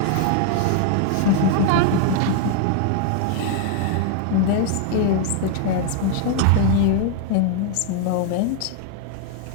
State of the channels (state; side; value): different; both; correlation 0.00